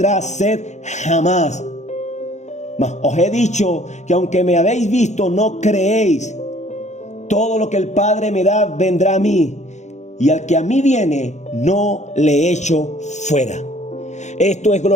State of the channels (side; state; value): right; late; 0.34 ms